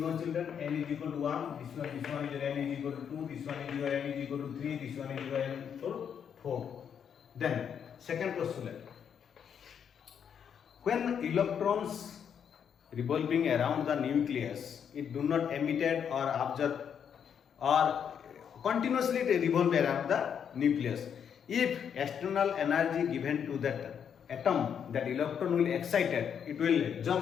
children, n is equal to 1, this one is your n is equal to 2, this one is your n is equal to 3, this one is your n is equal to 4. Then second postulate, when electrons revolving around the nucleus, it do not emitted or absorbed or continuously revolve around the nucleus. If external energy given to that atom, that electron will excited, it will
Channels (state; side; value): quieter; right; 7.9 dB